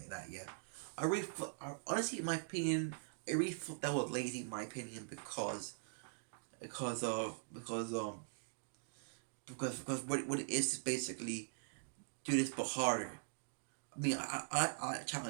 that. Yeah, honestly, in my opinion, I really thought that was lazy. In my opinion, because of because what it is basically do this but harder. I mean, I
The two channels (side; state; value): left; silent; digital silence